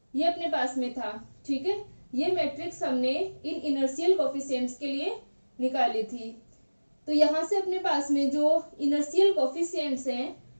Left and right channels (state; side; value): inverted; both; correlation -1.00